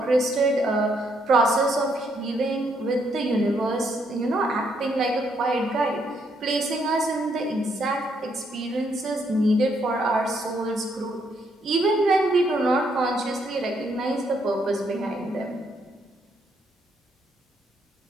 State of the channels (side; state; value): both; normal; correlation 0.73